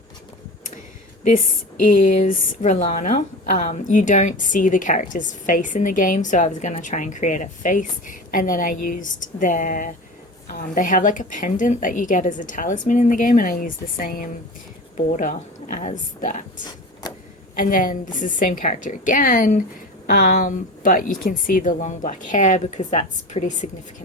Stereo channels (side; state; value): both; normal; correlation 0.32